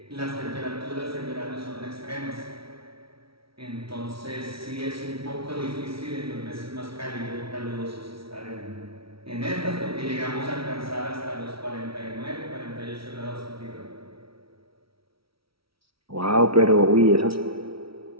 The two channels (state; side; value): late; left; 0.75 ms